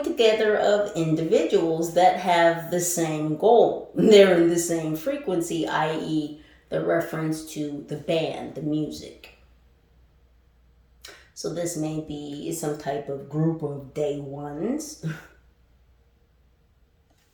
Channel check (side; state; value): both; identical; correlation 1.00